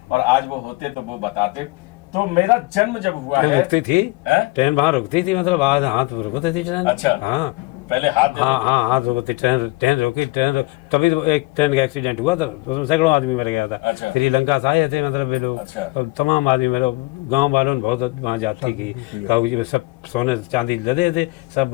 और आज वो होते तो वो बताते। तो मेरा जन्म जब हुआ है, रुकती थी ट्रेन, वहाँ रुकती थी, मतलब आज हाथ रुकती थी ट्रेन। अच्छा हाँ, पहले हाथ हाँ हाँ हाथ रोकते, ट्रेन ट्रेन रोकी, तभी तो एक ट्रेन का एक्सीडेंट हुआ था, उसमें सैकड़ों आदमी मर गया था। अच्छा। श्रीलंका से आए थे मतलब ये लोग, अच्छा। तो तमाम आदमी मेरे गांव वालों ने बहुत वहाँ जाती की, तो सब सोने चांदी लदे थे, सब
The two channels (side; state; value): right; quieter; 22.8 dB